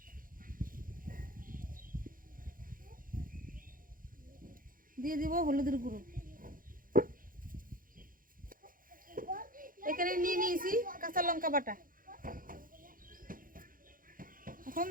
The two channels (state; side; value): late; left; 0.40 ms